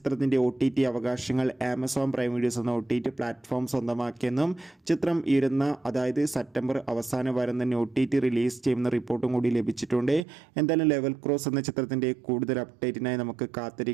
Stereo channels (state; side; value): drops out; left; at 10.2 s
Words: OTT അവകാശങ്ങൾ ആമസോൺ പ്രൈം വീഡിയോസ് എന്ന OTT പ്ലാറ്റ്ഫോം സ്വന്തമാക്കിയെന്നും ചിത്രം അതായത് സെപ്റ്റംബർ അവസാന വാരം തന്നെ OTT റിലീസ് ചെയ്യുന്ന റിപ്പോർട്ടും കൂടി ലഭിച്ചിട്ടുണ്ട്. എന്തായാലും ലെവൽ ക്രോസ് എന്ന ചിത്രത്തിൻ്റെ കൂടുതൽ അപ്ഡേറ്റിനായി നമുക്ക്